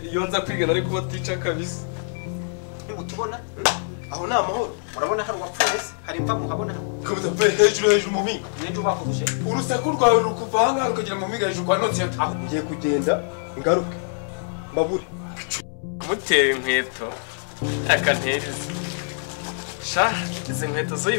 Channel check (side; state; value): right; silent; digital silence